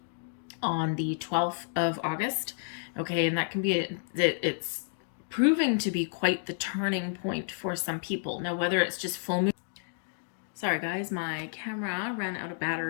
on the 12th of August. Okay, and that can be, it's proving to be quite the turning point for some people. Now, whether it's just full moon. Sorry guys, my camera ran out of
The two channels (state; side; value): silent; right; digital silence